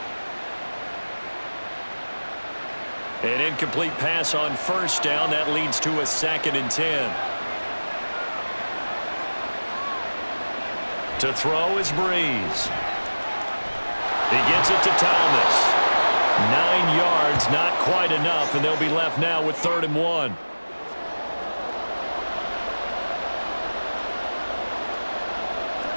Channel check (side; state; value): both; inverted; correlation -1.00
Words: An incomplete pass on first down. That leads to a 2nd and 10. To throw is Breeze. He gets it to Thomas. 9 yards, not quite enough, and they'll be left now with 3rd and 1.